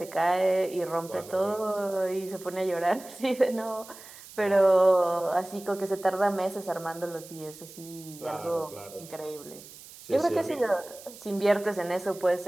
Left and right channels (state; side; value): noise; right; hiss, 18 dB below the sound